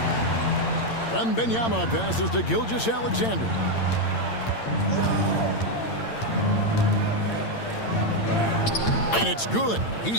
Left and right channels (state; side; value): late; right; 8.8 ms